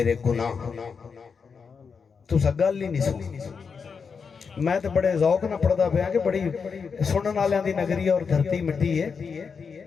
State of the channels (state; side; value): quieter; right; 5.7 dB